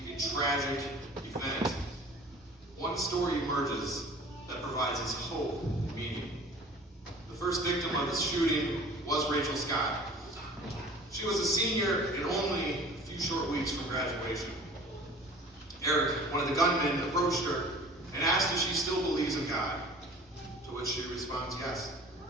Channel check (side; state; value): both; normal; correlation 0.45